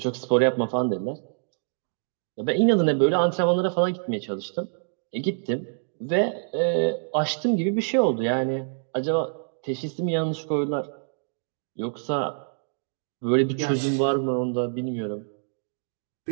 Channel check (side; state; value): left; silent; digital silence